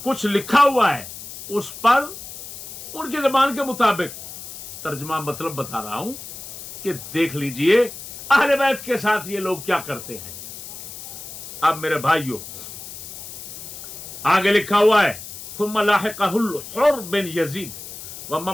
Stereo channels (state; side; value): noise; left; hiss, 12 dB below the sound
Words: کچھ لکھا ہوا ہے اس پر ان کی زبان کے مطابق ترجمہ مطلب بتا رہا ہوں کہ دیکھ لیجئے اہل بیت کے ساتھ یہ لوگ کیا کرتے ہیں۔ اب میرے بھائیوں آگے لکھا ہوا ہے ثم لاحقہ الحر بن یزید